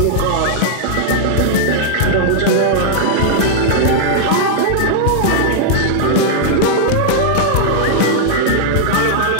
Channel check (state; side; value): different; both; correlation -0.01